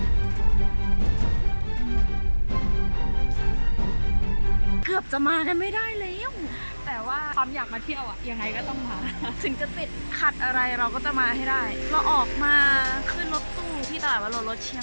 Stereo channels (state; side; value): inverted; both; correlation -1.00